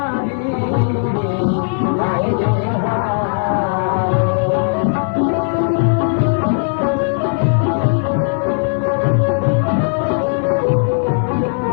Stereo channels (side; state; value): right; silent; 59 dB below the other